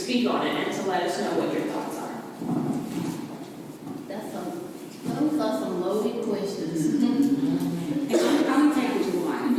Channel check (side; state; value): both; identical; correlation 1.00